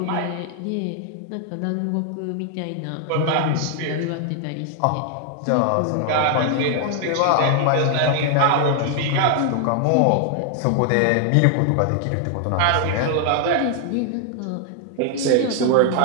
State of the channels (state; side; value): different; both; correlation 0.00